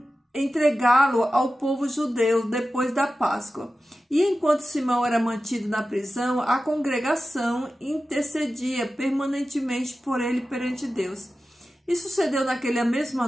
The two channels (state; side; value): normal; both; correlation 0.94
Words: entregá-lo ao povo judeu depois da Páscoa. E enquanto Simão era mantido na prisão, a congregação intercedia permanentemente por ele perante Deus. E sucedeu naquela mesma